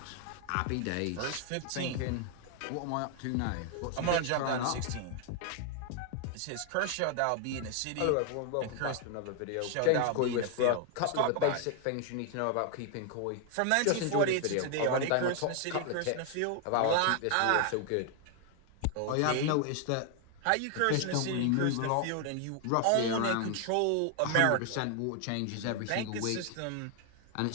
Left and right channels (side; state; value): both; different; correlation 0.00